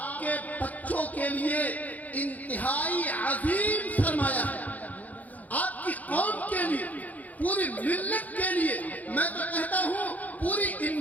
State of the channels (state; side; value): late; right; 0.078 ms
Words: کے بچوں کے لیے انتہائی عظیم سرمایہ ہے، آپ کی قوم کے لیے، پوری ملت کے لیے، میں تو کہتا ہوں پوری